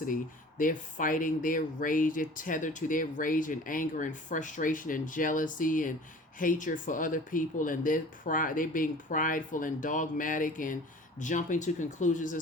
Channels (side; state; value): both; normal; correlation 0.44